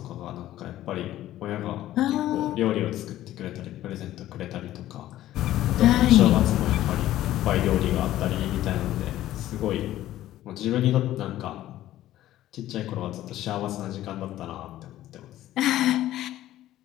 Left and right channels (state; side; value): quieter; right; 13.9 dB